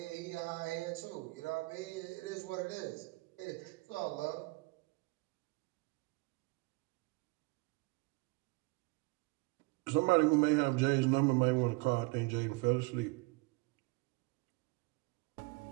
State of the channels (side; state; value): left; quieter; 26.0 dB